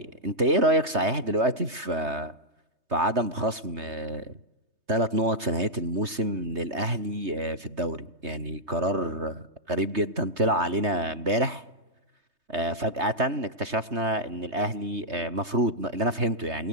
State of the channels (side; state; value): left; late; 3.2 ms